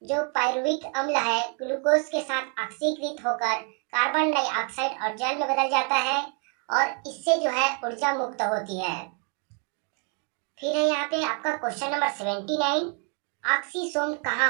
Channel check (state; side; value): quieter; left; 39.4 dB